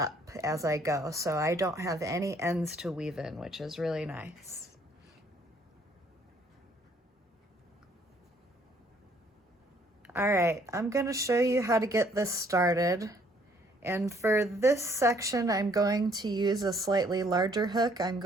as I go, so I don't have any ends to weave in, which is really nice. All right, I'm gonna show you how to get this started. And for this section, I'm going to use a slightly larger hook. I'm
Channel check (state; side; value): normal; both; correlation 0.63